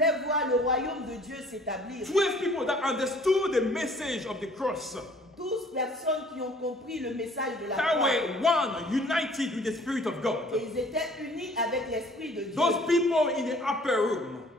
voir le royaume de Dieu s'établir. 12 people that understood the message of the cross. 12 personnes qui ont compris le message de la croix. That were one, united with the Spirit of God. Et ils étaient unis avec l'Esprit de Dieu. Those people in the upper room.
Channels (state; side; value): normal; both; correlation 0.55